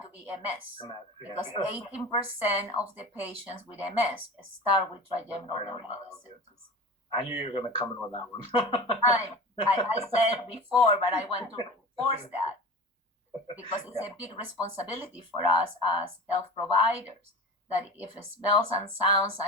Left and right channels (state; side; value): normal; both; correlation 0.33